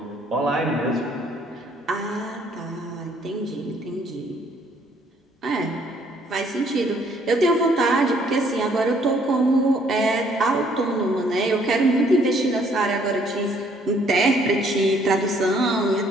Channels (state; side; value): normal; both; correlation 0.64